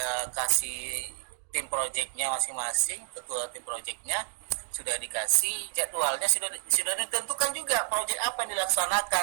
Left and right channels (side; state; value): left; silent; 58 dB below the other